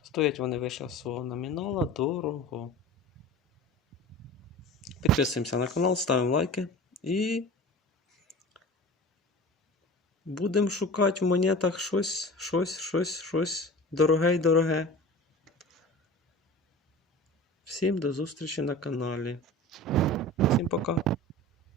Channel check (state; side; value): normal; both; correlation 0.36